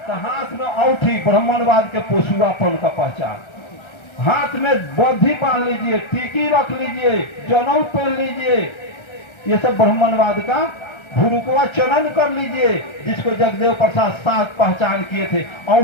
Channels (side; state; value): right; late; 1.3 ms